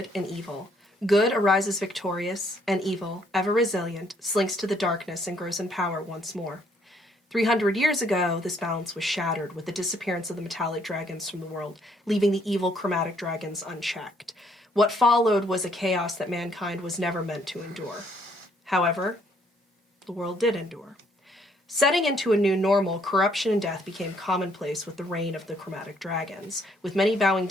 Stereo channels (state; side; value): normal; both; correlation 0.67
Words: and evil. Good arises victorious, and evil, ever resilient, slinks to the darkness and grows in power once more. 300 years ago, this balance was shattered with the disappearance of the metallic dragons from the world, leaving the evil chromatic dragons unchecked. What followed was a chaos that mankind was never meant to endure. However, the world did endure. Setting into a new normal, corruption and death became commonplace with the reign of the chromatic dragons, with many bowing